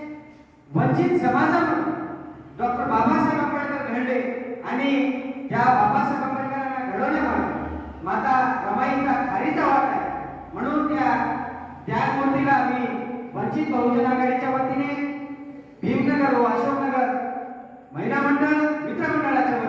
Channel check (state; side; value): identical; both; correlation 1.00